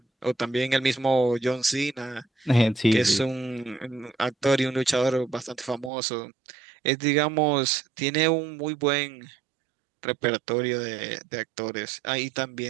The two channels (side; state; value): left; drops out; at 5.9 s